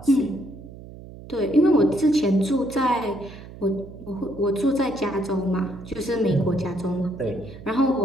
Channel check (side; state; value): right; noise; hum, 16 dB below the sound